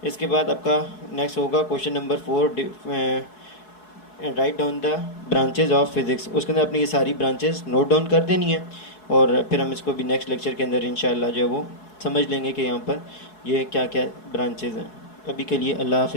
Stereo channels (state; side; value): late; right; 4.7 ms